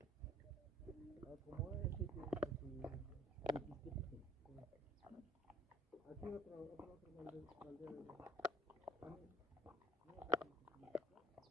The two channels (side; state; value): both; normal; correlation 0.55